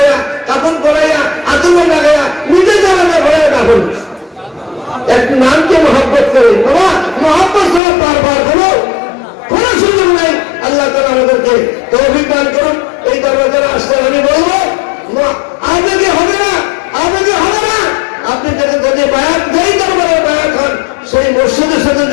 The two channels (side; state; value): right; drops out; at 7.8 s